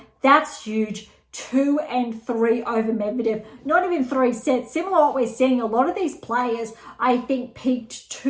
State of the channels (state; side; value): identical; both; correlation 1.00